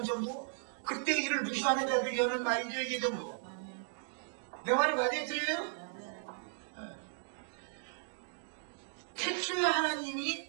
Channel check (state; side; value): silent; left; digital silence